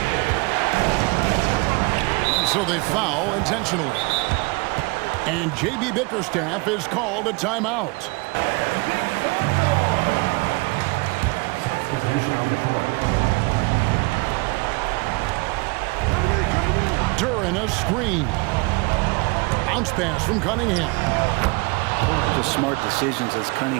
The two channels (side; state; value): left; quieter; 27.4 dB